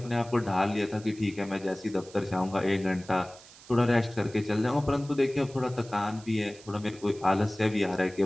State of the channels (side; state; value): right; noise; hiss, 21 dB below the sound